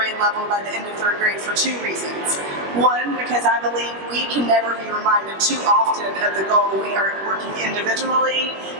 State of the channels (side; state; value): left; late; 21 ms